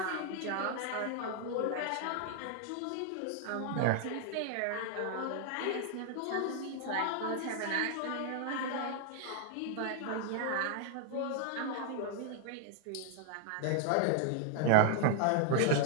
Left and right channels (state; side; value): different; both; correlation 0.00